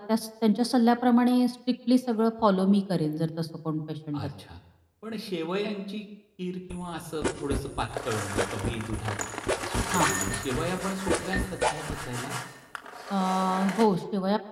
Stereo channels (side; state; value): both; identical; correlation 1.00